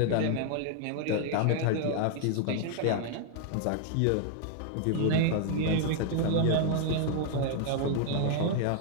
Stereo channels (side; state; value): both; different; correlation 0.00